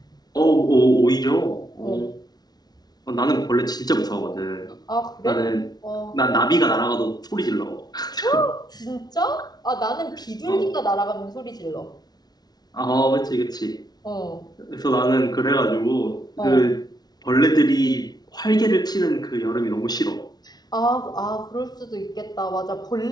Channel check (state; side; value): late; right; 0.19 ms